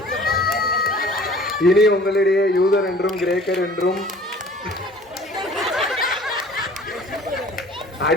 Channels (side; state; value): both; normal; correlation 0.49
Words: இனி உங்களிடையே யூதர் என்றும் கிரேக்கர் என்றும்